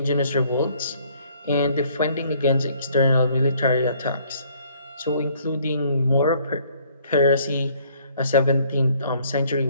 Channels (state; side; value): inverted; both; correlation -0.62